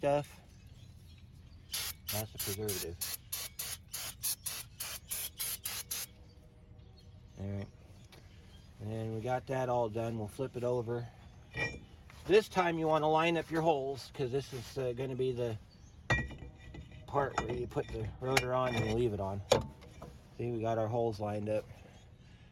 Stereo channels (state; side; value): identical; both; correlation 1.00